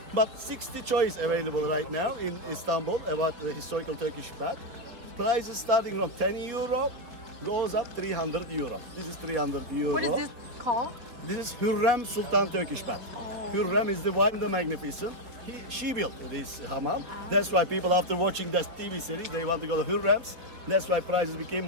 But 60 choice available right now in Istanbul about the historical Turkish bath. Price is starting from 10 euro, goes up 300 euro. This is 300 euro. What is this called? This is Hürrem Sultan Turkish bath. Oh. Hürrem is the one, the magnificent. She built this hammam. That's why people after watching that TV series, they want to go to Hürrem's. That's why prices became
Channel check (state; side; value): late; left; 4.6 ms